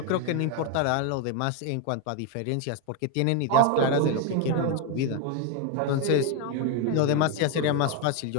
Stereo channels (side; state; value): both; different; correlation 0.01